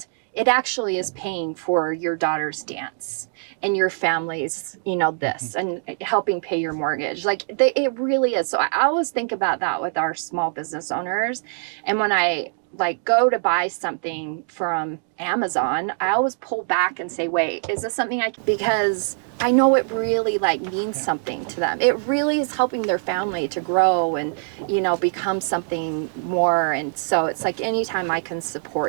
it actually is paying for your daughter's dance and your family's, this, and helping pay your mortgage. Like it really is. So I always think about that with our small business owners. And when I like go to buy something from Amazon, I always pull back and say, wait, is this something because I know it really like means something to them. It really is helping their family to grow and, become something more. And so it's like anytime I can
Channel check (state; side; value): silent; left; 60 dB below the other